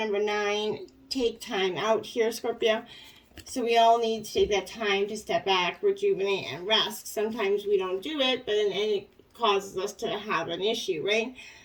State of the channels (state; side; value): identical; both; correlation 1.00